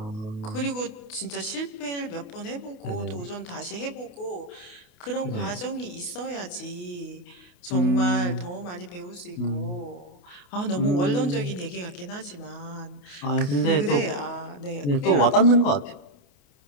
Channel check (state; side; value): late; right; 28 ms